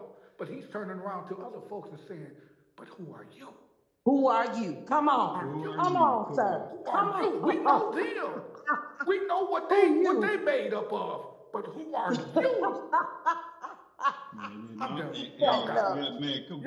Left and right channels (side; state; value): both; identical; correlation 1.00